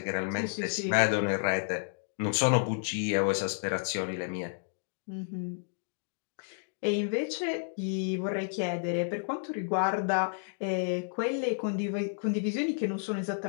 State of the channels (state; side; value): silent; right; digital silence